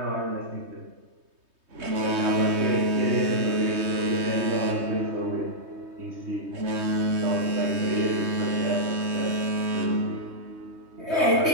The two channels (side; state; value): left; late; 3.2 ms